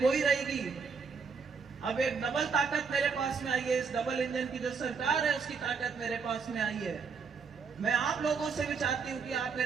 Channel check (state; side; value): quieter; left; 5.5 dB